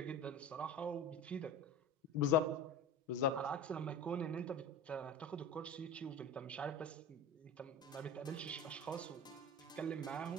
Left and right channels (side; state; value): both; normal; correlation 0.32